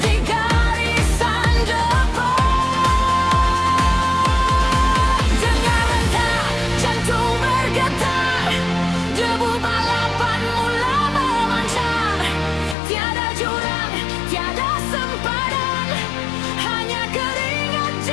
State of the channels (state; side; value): drops out; right; at 12.8 s